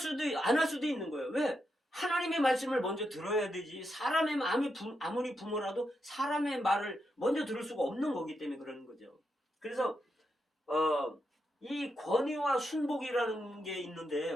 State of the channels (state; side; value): normal; both; correlation 0.84